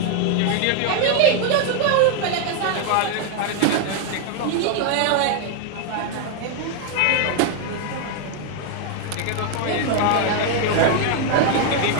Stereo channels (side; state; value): both; different; correlation 0.00